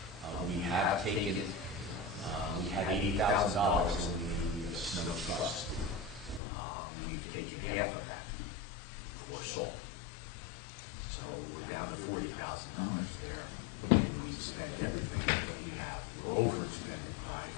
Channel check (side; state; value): right; drops out; at 6.4 s